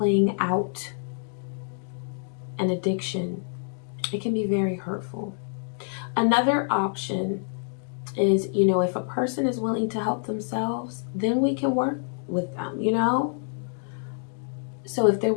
out an addiction, it can be very hurtful. Another option is, you know, if a person is willing to help themselves, then we can work with them, you know? So if they're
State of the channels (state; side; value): silent; right; digital silence